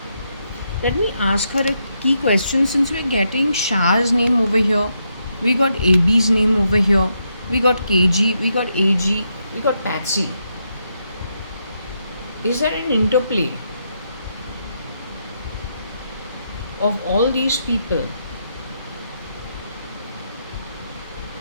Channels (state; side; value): inverted; both; correlation -0.81